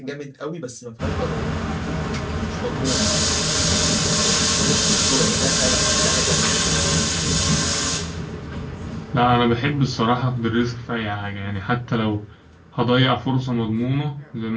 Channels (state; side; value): identical; both; correlation 1.00